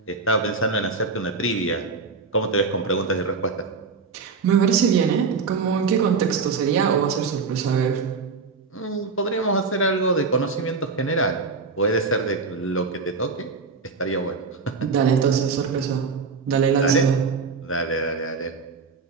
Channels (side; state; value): left; quieter; 4.7 dB